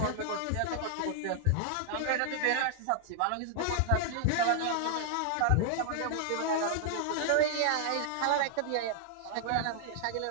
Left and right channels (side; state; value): both; different; correlation 0.00